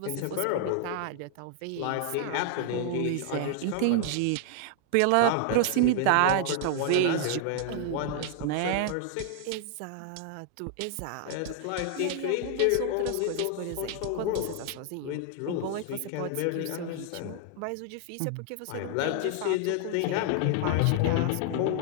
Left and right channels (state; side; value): different; both; correlation 0.00